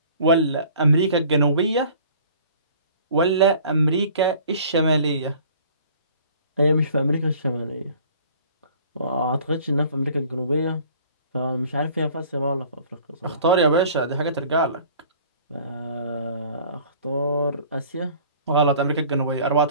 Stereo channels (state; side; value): inverted; both; correlation -0.50